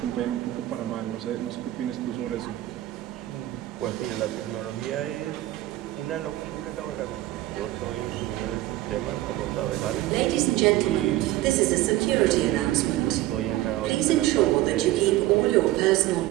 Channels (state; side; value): quieter; left; 15.9 dB